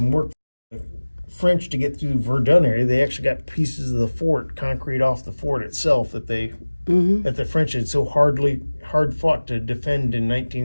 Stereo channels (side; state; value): both; inverted; correlation -1.00